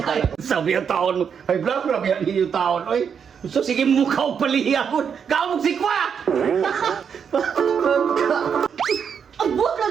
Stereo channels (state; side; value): quieter; left; 7.1 dB